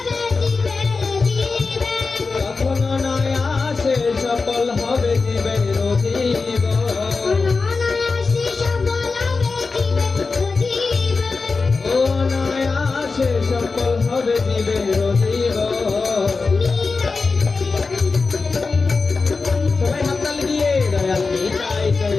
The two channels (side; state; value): right; quieter; 4.3 dB